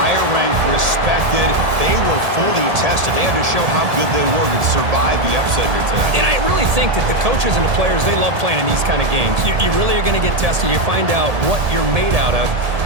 ranked, respected. They were fully tested. They had to show how good they were to survive the upset here tonight. And I really think that the coaches and the players, they love playing in these kind of games. You really are going to get tested. You find out what you're made out of.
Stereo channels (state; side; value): late; left; 1.8 ms